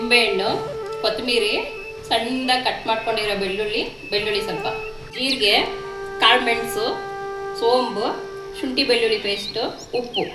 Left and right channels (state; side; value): identical; both; correlation 1.00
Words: ಕೊತ್ತಂಬರಿ, ಸಣ್ಣದಾಗಿ ಕಟ್ ಮಾಡ್ಕೊಂಡಿರೋ ಬೆಳ್ಳುಳ್ಳಿ ಸ್ವಲ್ಪ, ಜೀರಿಗೆ, ಕಾಳು ಮೆಣಸು, ಸೋಂಬು, ಶುಂಠಿ ಬೆಳ್ಳುಳ್ಳಿ ಪೇಸ್ಟು, ಉಪ್ಪು,